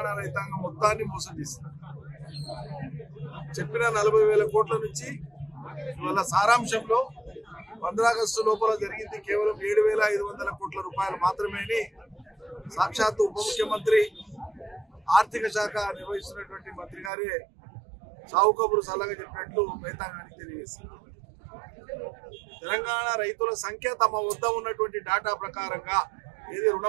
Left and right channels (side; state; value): left; drops out; at 17.1 s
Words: రైతాంగం మొత్తాన్ని మోసం చేసింది. చెప్పిన 40,000 కోట్ల నుంచి ఇవాళ సారాంశంలో 15 ఆగస్టు లోపల జరిగింది కేవలం 7,500 కోట్ల రూపాయలు మాత్రమే సాక్షాత్తు ఉప ముఖ్యమంత్రి ఆర్థిక శాఖ నిర్వహిస్తున్నటువంటి మంత్రి గారే సావు కబురు సలహా చెప్పినట్లు రైతాంగానికి తెలియజేశారు. తెలంగాణ రైతుల సంఖ్య తమ వద్ద ఉన్నటువంటి డేటా ప్రకారంగా ఇది